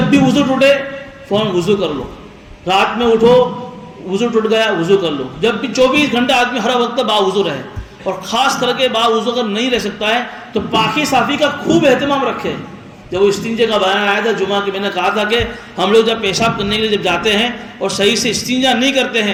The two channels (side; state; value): both; identical; correlation 1.00